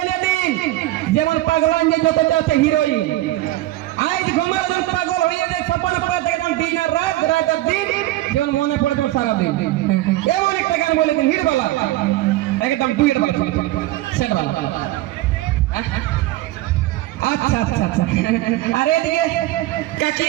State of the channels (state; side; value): quieter; left; 16.5 dB